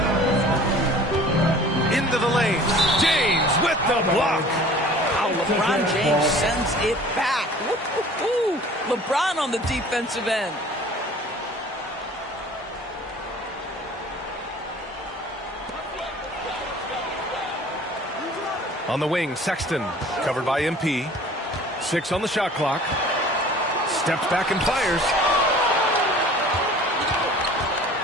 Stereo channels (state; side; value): normal; both; correlation 0.47